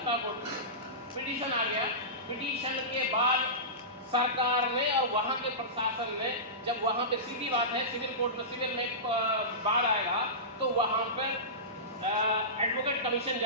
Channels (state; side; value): normal; both; correlation -0.20